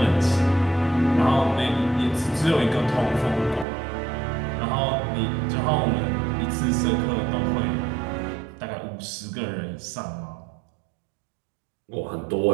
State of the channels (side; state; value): left; drops out; at 3.7 s